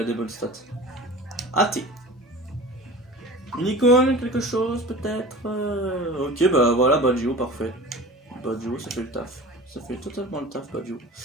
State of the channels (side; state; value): both; normal; correlation 0.38